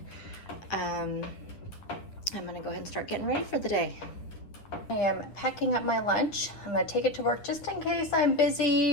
I'm gonna go ahead and start getting ready for the day. I am packing up my lunch. I'm gonna take it to work just in case I'm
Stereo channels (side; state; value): right; late; 9.8 ms